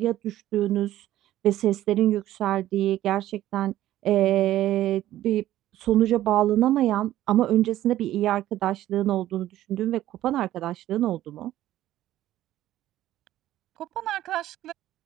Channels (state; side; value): quieter; left; 13.8 dB